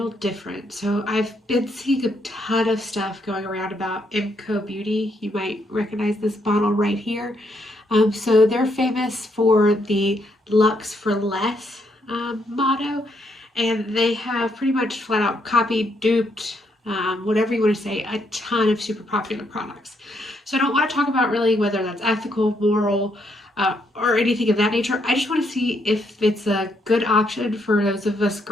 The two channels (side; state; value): both; normal; correlation 0.75